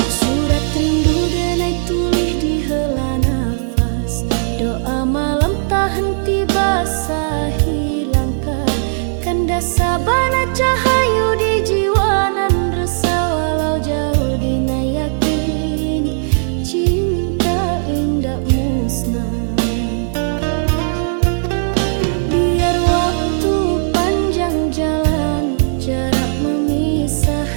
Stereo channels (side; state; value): left; silent; digital silence